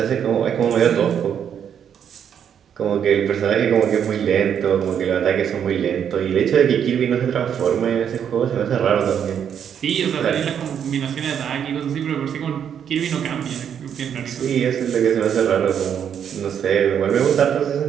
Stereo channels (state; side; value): quieter; left; 8.5 dB